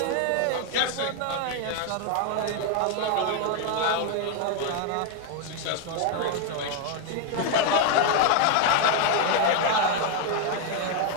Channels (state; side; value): different; both; correlation 0.01